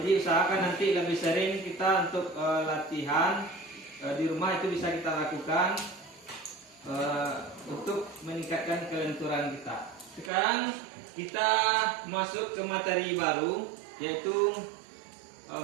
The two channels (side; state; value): left; drops out; at 10.3 s